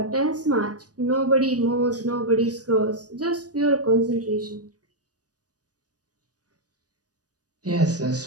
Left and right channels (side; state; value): left; late; 0.68 ms